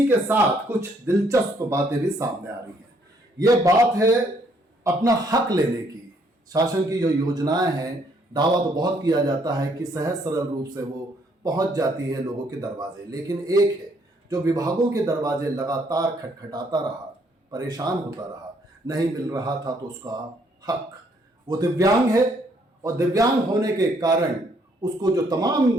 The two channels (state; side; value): normal; both; correlation 0.68